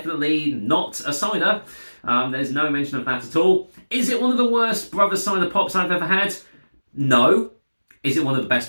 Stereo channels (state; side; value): inverted; both; correlation -1.00